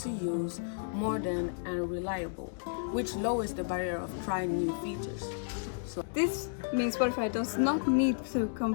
use, modern, and reliable, which lowers the barrier of trying new features. This means Spotify does not need to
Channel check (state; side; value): silent; right; digital silence